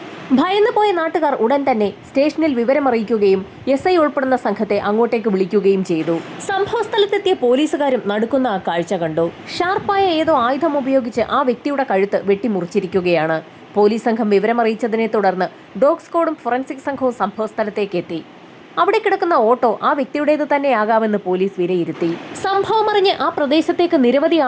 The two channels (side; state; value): both; identical; correlation 1.00